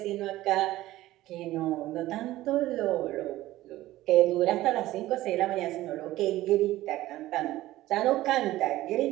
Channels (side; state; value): left; quieter; 16.0 dB